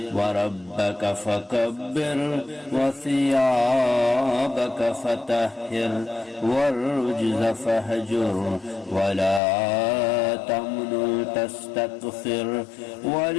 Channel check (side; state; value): right; drops out; at 9.4 s